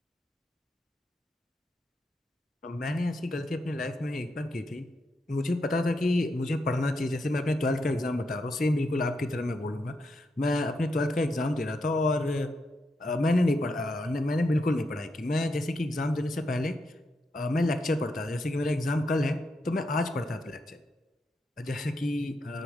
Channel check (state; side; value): normal; both; correlation 0.82